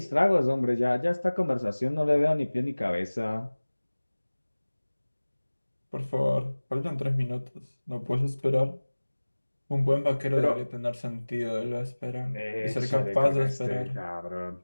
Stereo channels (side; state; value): both; inverted; correlation -1.00